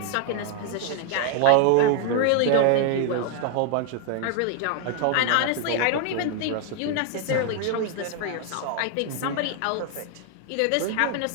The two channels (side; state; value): both; different; correlation 0.00